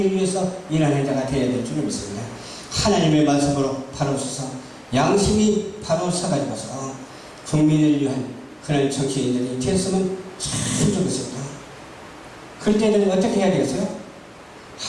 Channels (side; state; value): both; identical; correlation 1.00